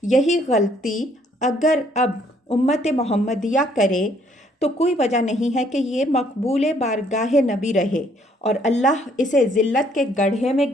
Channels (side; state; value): both; normal; correlation 0.65